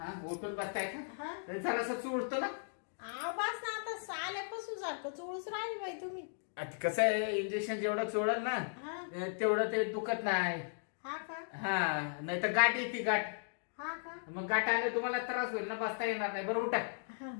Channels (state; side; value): silent; right; digital silence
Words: उठून बसताय का? हा जरासं चुळतो ना. बस ना आता आल्यापासून सारखं चोळूच राहील बाई तुम्ही. आता कसं आहे इंजेक्शन जेवढं चोळल ना तेवढं ते दुखत नाही. हा का? हा नाही तर गाठ येते गाठ. हा का? मग गाठ आले तुम्हाला त्रास होईल ना, बसता येणार नाही. बरं उठा.